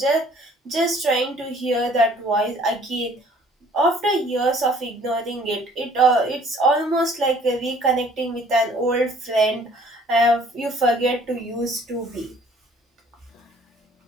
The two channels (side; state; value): both; normal; correlation 0.56